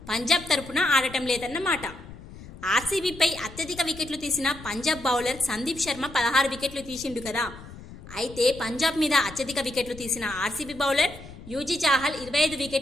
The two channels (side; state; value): left; noise; rumble, 16 dB below the sound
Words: పంజాబ్ తరపున ఆడటం లేదన్నమాట. ఆర్సీబీపై అత్యధిక వికెట్లు తీసిన పంజాబ్ బౌలర్ సందీప్ శర్మ 16 వికెట్లు తీసిండు కదా. అయితే పంజాబ్ మీద అత్యధిక వికెట్లు తీసిన ఆర్సీబీ బౌలర్ యూజీ చాహల్ 25